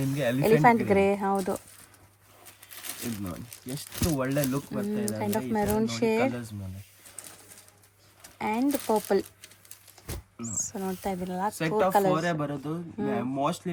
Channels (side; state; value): both; identical; correlation 1.00